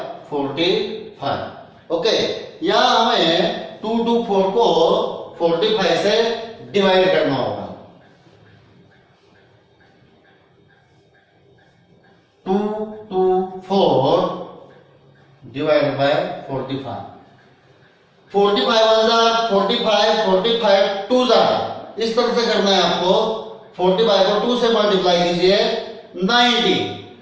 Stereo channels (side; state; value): both; identical; correlation 1.00